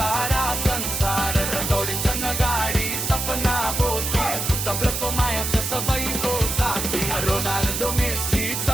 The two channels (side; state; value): right; noise; hiss, 2 dB below the sound